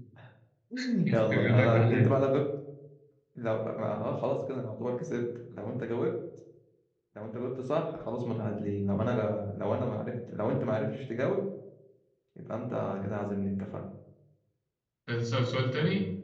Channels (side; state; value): both; identical; correlation 1.00